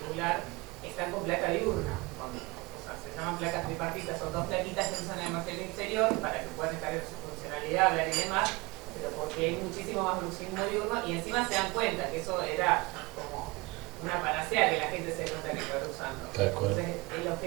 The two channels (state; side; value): quieter; left; 24.1 dB